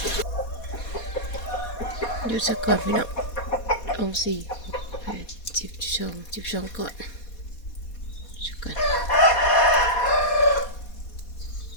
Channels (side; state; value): right; late; 4.2 ms